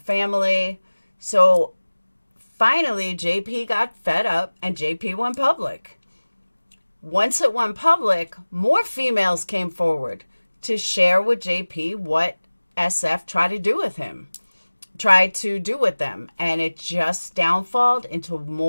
So finally, JP got fed up and JP went public. Once it went public, more females came forward to share with JP what SF tried to do with them. And it just downfalled into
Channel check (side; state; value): both; inverted; correlation -1.00